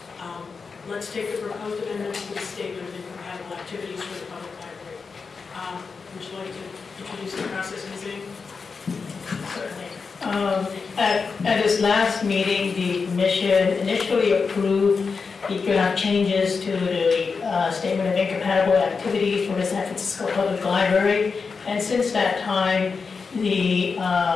Let's take the proposed amendments to the statement of incompatible activities for the public library. Would you like to introduce the process, Ms. Ing? Certainly. At this last meeting, the commission initially approved the draft changes to the statement of incompatible activities for the San Francisco Public Library. And since that time, the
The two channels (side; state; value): right; quieter; 5.0 dB